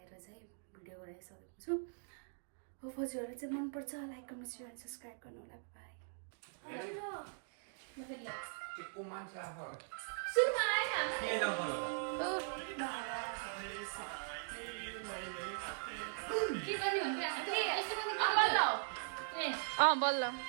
चाहिँ भिडियो गराइसकेको छु. हो हजुरहरूलाई चाहिँ मनपर्छ like comment share and subscribe गर्नु होला. बाई. बल्ल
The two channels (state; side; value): silent; left; digital silence